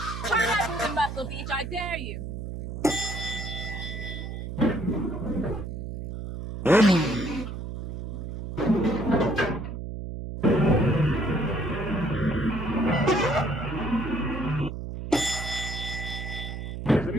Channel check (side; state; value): right; noise; hum, 7 dB below the sound